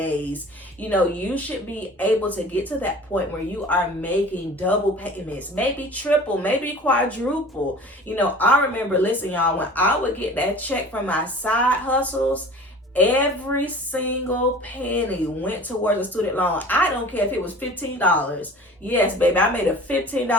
You should be able to get to that point where you are making double payments, maybe triple, maybe quadruple. I remember, listen, y'all, when I would get that check from my side hustles, every single penny went towards a student loan. I don't care if it was $15. Yes, baby, I made a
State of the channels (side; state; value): both; normal; correlation 0.43